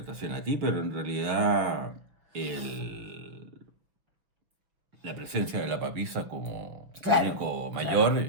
a ti, pero en realidad la presencia de la papisa como muñeco mayor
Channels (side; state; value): left; late; 6.1 ms